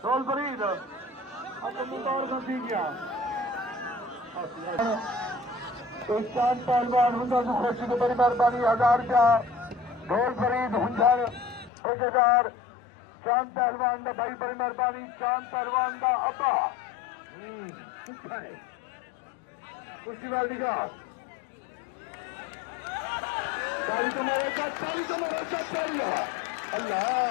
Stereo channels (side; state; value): right; drops out; at 11.7 s